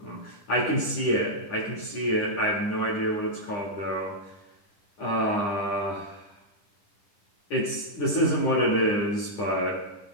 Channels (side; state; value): right; late; 9.9 ms